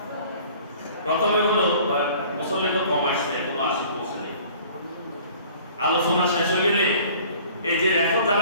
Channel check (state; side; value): inverted; both; correlation -0.50